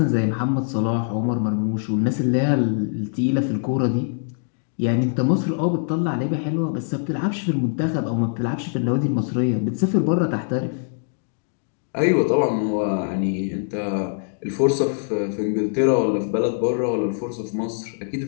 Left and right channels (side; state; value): right; silent; digital silence